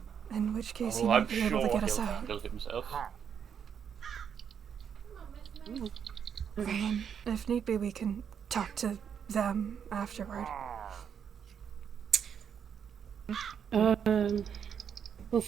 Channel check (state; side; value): quieter; left; 7.7 dB